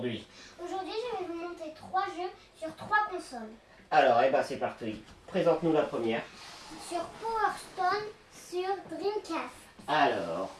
Aujourd'hui, je vais vous montrer 3 jeux sur 3 consoles. Alors, c'est parti. Présente-nous la première. Sur Power Stone, sur Dreamcast. Alors,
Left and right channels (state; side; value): identical; both; correlation 1.00